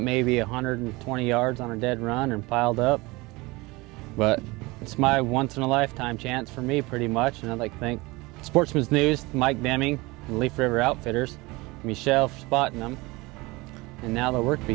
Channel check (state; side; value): quieter; left; 23.0 dB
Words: maybe 120 yards on a dead run and piled up. But it's my once-in-a-lifetime chance for me, pretty much, and I'd like to thank Sportsman's News, Mike Deming, and Leaf River Outfitters, Michelle for spotting them, and now the work